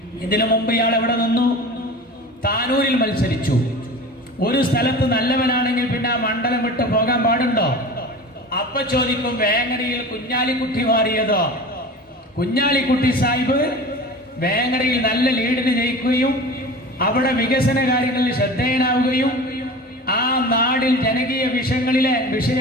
ഇതിനു മുമ്പ് ഇയാൾ എവിടെ നിന്നു? താനൂരിൽ മത്സരിച്ചു. ഒരു സ്ഥലത്ത് നല്ലവനാണെങ്കിൽ പിന്നെ ആ മണ്ഡലം വിട്ട് പോകാൻ പാടുണ്ടോ? അപ്പൊ ചോദിക്കും, വേങ്ങരയിൽ കുഞ്ഞാലിക്കുട്ടി മാറിയതോ? കുഞ്ഞാലിക്കുട്ടി സാഹിബ് വേങ്ങരയിൽ നല്ല ലീഡിന് ജയിക്കുകയും അവിടെ വികസന കാര്യങ്ങളിൽ ശ്രദ്ധേയനാവുകയും ആ നാടിൽ ജനകീയ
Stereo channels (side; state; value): both; normal; correlation 0.35